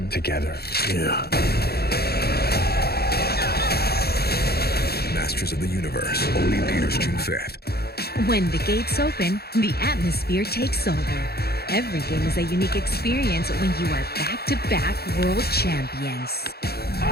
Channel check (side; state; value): right; late; 0.46 ms